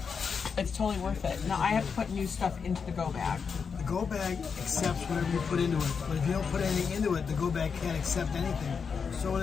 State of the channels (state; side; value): quieter; right; 5.9 dB